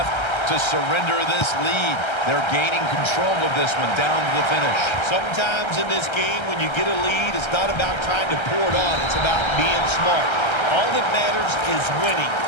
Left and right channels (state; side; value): late; right; 1.3 ms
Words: to surrender this lead. They're gaining control of this one down to the finish. Sometimes in this game, when you get a lead, it's not about trying to pour it on. It's about being smart. All that matters is winning.